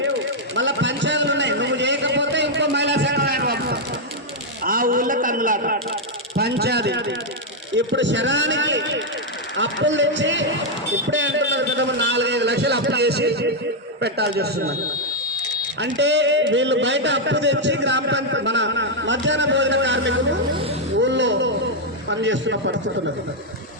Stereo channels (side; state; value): both; normal; correlation -0.01